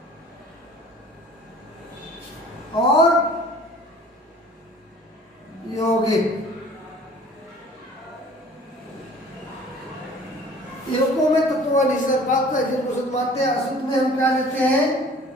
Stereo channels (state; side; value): normal; both; correlation 0.49